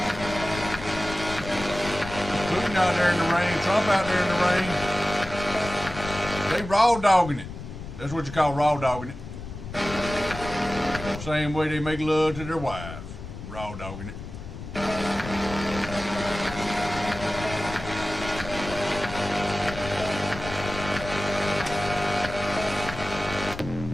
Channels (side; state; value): left; noise; rumble, 11 dB below the sound